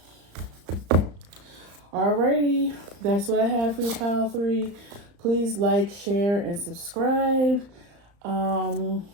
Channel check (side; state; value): left; late; 35 ms